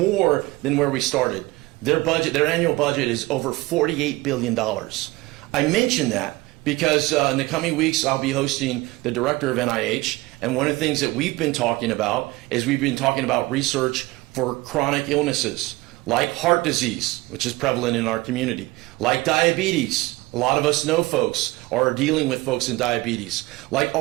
than where we started. Their annual budget is over $48 billion. I mention that because in the coming weeks, I'll be hosting the director of NIH, and one of the things that we've been talking about is we've been talking about research for chronic illnesses, like heart disease, which is prevalent in our community, like diabetes. A lot of us know folks or are dealing with folks in diabetes, like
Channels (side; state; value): left; quieter; 20.7 dB